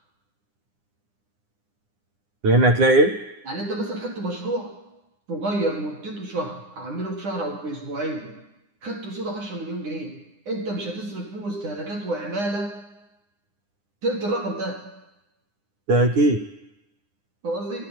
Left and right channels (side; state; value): left; late; 9.8 ms